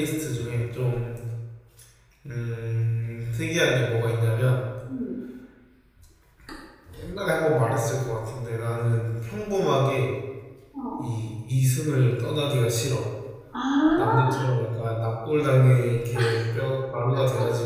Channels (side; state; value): both; identical; correlation 1.00